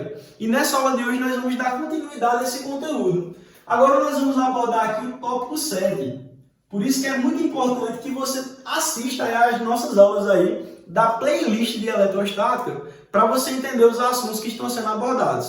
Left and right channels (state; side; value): identical; both; correlation 1.00